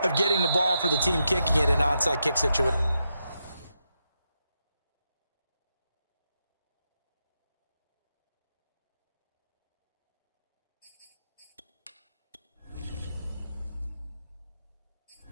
of getting the ball for the team kicking it in an onside kick situation.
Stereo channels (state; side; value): inverted; both; correlation -0.85